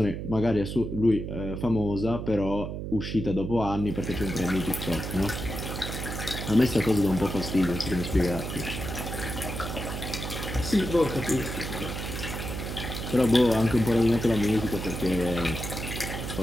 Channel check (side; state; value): right; noise; hum, 6 dB below the sound